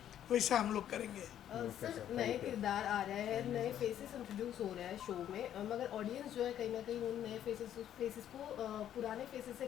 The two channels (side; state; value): right; quieter; 10.7 dB